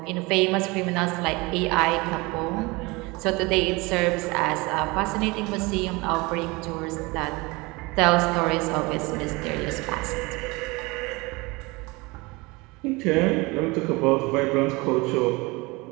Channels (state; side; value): quieter; left; 24.5 dB